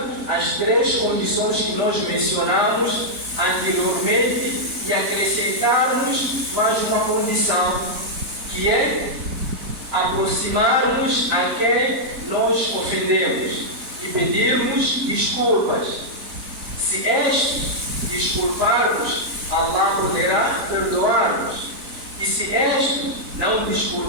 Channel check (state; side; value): late; left; 3.9 ms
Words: as três condições que nós mencionamos anteriormente e acrescentarmos mais uma condição, que é aproximarmos a quem nós ofendemos e pedirmos desculpas. Se desculparmos, Allah poderá perdoar-nos. E se não